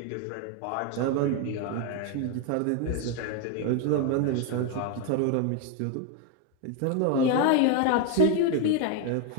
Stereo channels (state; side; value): different; both; correlation 0.01